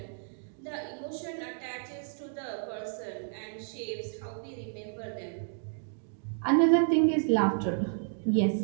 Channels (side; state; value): left; silent; digital silence